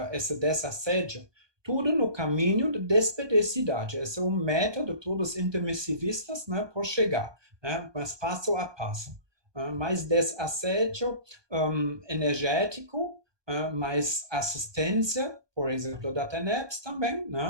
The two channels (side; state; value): left; late; 1.2 ms